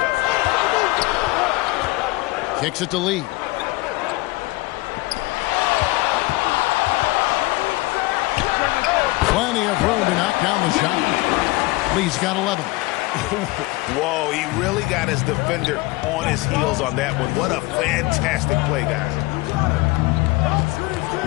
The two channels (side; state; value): right; quieter; 21.4 dB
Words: Kicks it to Lee. Plenty of room to knock down the shot. Lee's got 11. Whoa, he really got his defender on his heels on that one. What a fantastic play, guys.